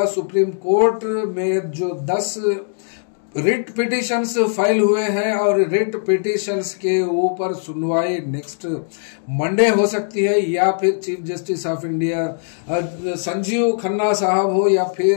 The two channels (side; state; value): right; silent; digital silence